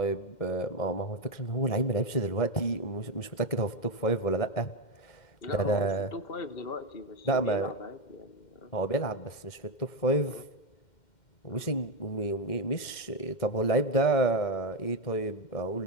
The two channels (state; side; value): late; right; 2.1 ms